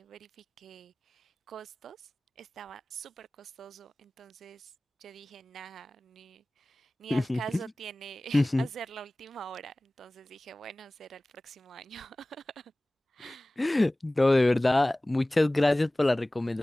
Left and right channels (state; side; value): normal; both; correlation 0.98